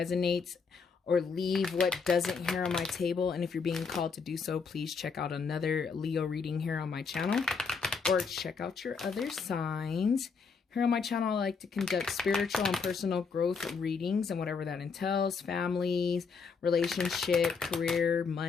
or leave what doesn't here on my table, and if you're being called to do so, please check out another Leo reading here on my channel, or check out your other signs. Here on my channel, I like to conduct spiritual and personal growth readings and whatever that entails. Families, relationship, career,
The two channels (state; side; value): quieter; right; 5.3 dB